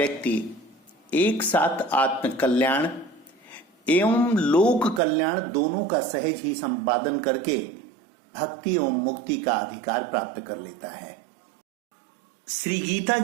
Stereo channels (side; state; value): left; drops out; at 5.0 s